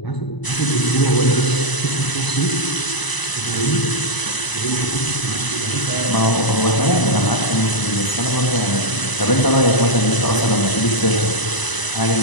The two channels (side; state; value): right; late; 1.0 ms